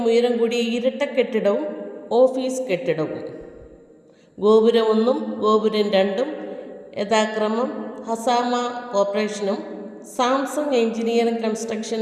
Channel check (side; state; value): both; identical; correlation 1.00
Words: ഉയരം കൂടിയ ഇരട്ട കെട്ടിടവും ഓഫീസ് കെട്ടിടവും. ഗോപുരം 1ഉം ഗോപുരം 2ഉം യഥാക്രമം ഹസാമ കോർപ്പറേഷനും സാംസങ് എഞ്ചിനീയറിംഗ്